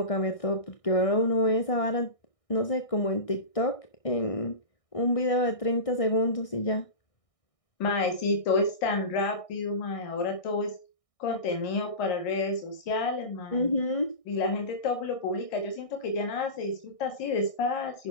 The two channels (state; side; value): late; right; 1.6 ms